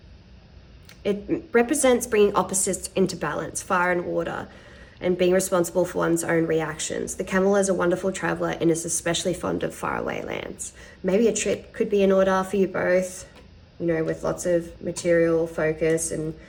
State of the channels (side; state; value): both; identical; correlation 1.00